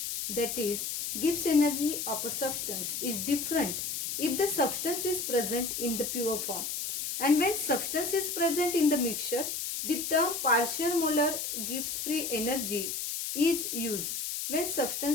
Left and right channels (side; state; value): left; noise; hiss, 3 dB below the sound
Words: that is Gibbs energy of a substance is different if the substance is present in the pure form, and when substance is present in the mixture the term partial molar Gibbs free energy is used. When